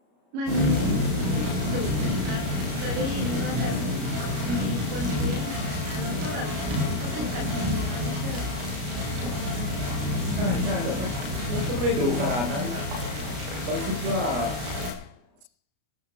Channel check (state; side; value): late; left; 33 ms